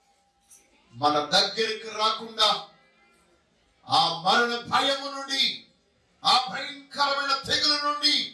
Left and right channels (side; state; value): both; identical; correlation 1.00